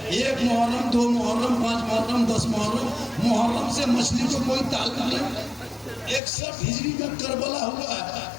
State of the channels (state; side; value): drops out; right; at 6.2 s